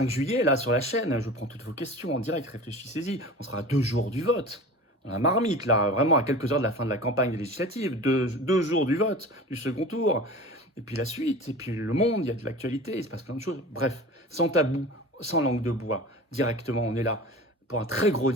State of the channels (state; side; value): normal; both; correlation 0.36